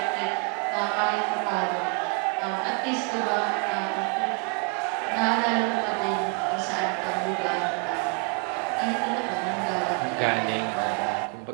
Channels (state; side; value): quieter; left; 34.8 dB